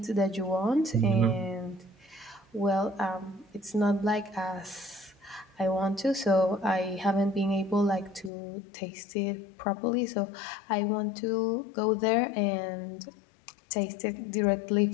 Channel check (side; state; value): right; drops out; at 8.3 s